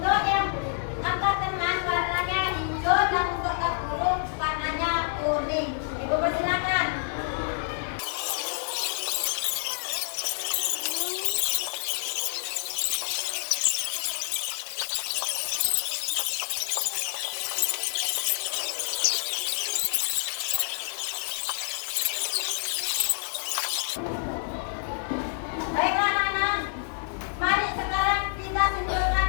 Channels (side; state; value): right; silent; digital silence